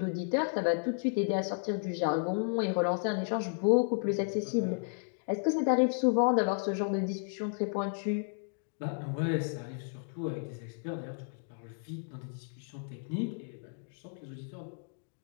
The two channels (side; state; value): right; silent; digital silence